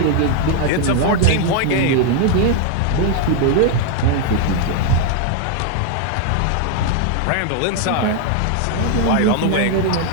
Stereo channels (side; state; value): both; different; correlation 0.00